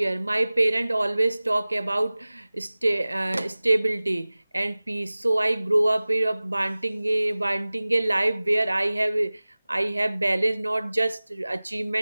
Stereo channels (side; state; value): both; inverted; correlation -0.99